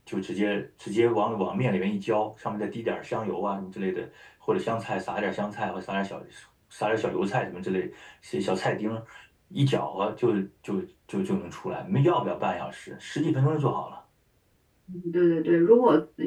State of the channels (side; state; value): both; identical; correlation 1.00